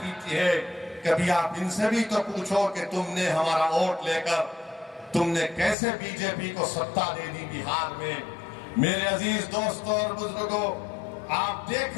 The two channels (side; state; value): right; drops out; at 5.8 s